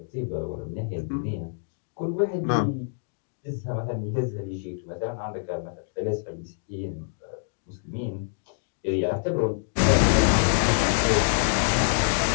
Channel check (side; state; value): right; silent; digital silence